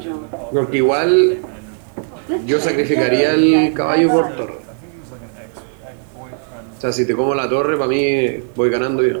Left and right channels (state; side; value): silent; left; digital silence